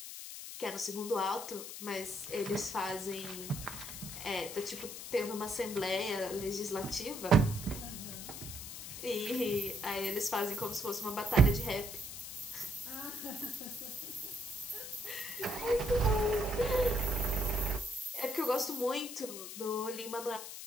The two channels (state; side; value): noise; left; hiss, 9 dB below the sound